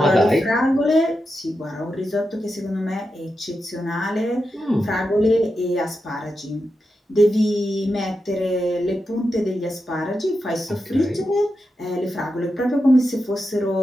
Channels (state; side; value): normal; both; correlation 0.88